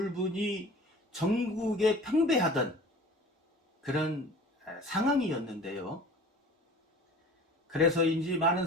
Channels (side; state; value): both; normal; correlation 0.43